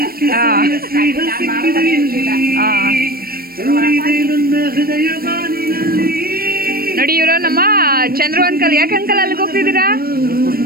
ನೋಡಿ ಇವರು ನಮ್ಮ ಚಂದ್ರು ಅಂಕಲ್. ಯಾಕೆ ಅಂಕಲ್ ಅಲ್ಲಿಗೆ ಹೋಗ್ತಿದ್ದೀರಾ?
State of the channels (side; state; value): left; late; 0.44 ms